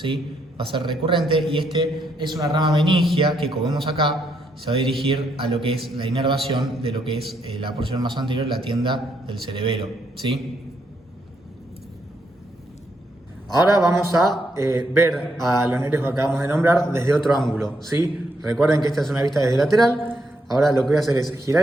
Va a ser recurrente y este es una rama meningia que, como vemos acá, se va a dirigir a lo que es la inervación de lo que es la porción más anterior, la tienda del cerebelo, ¿sí? Ahora vamos a ver a los nervios que acabamos de nombrar desde otro ángulo, ¿sí? Recuerden que esta es una vista desde lateral. Ahora lo que voy a hacer es girar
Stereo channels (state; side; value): normal; both; correlation 0.77